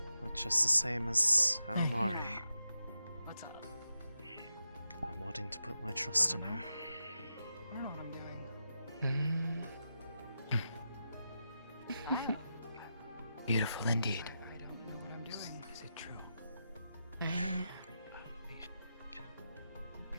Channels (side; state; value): both; inverted; correlation -0.88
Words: But just the same as Almari, What's up? I'm wanting to put my trust in her. I don't know what I'm doing. Beautiful indeed. I don't know what I'm doing. Is it true?